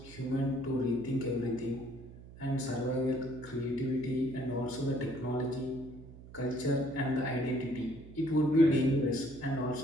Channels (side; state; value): right; noise; hum, 17 dB below the sound